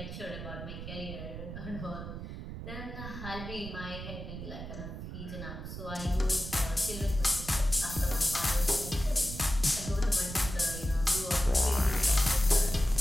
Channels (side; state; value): right; noise; rumble, 9 dB below the sound